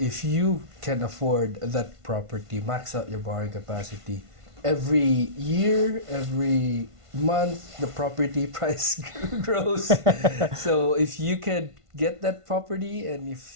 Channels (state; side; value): late; left; 1.5 ms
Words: you can afford that property, max out your borrowing capacity. Every year, every month, the property price grows. So if you can get that property, and